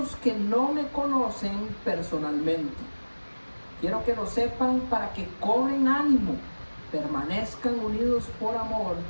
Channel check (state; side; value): inverted; both; correlation -1.00